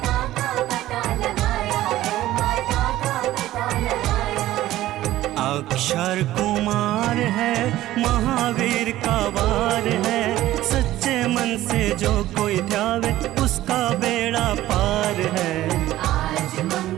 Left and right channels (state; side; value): quieter; left; 15.0 dB